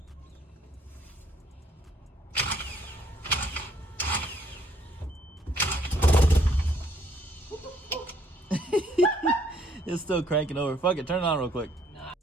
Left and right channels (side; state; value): both; normal; correlation 0.65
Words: It's still cranking over. Fuck it, turn it on real quick. Nah,